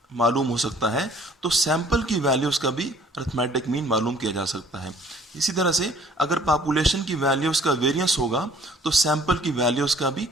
मालूम हो सकता है तो सैंपल की वैल्यूज़ का भी अरिथमेटिक मीन मालूम किया जा सकता है। इसी तरह से अगर पॉपुलेशन की वैल्यूज़ का वेरिएंस होगा तो सैंपल की वैल्यूज़ का भी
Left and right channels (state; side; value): normal; both; correlation 0.56